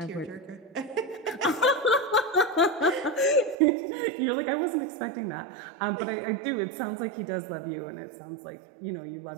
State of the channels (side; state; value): left; drops out; at 3.6 s